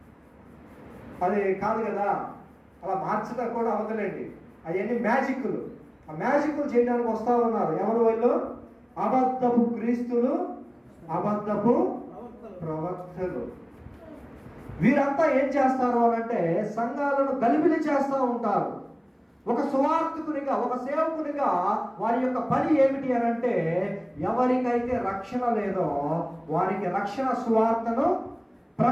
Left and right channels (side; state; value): both; identical; correlation 1.00